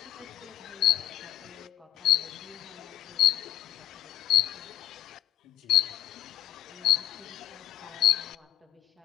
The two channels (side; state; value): right; quieter; 12.9 dB